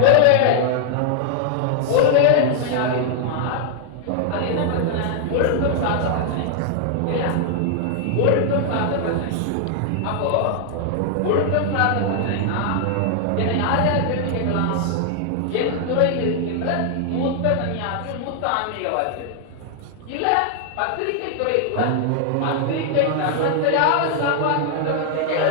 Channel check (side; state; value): both; different; correlation 0.00